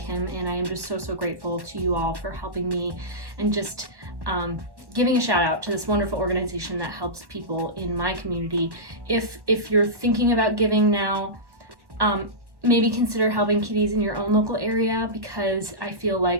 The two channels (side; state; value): left; late; 1.1 ms